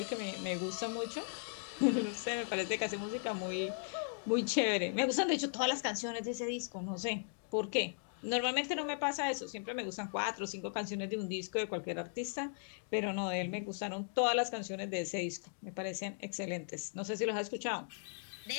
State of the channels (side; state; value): right; silent; digital silence